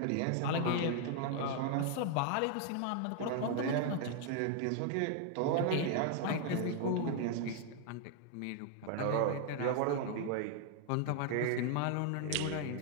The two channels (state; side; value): different; both; correlation 0.00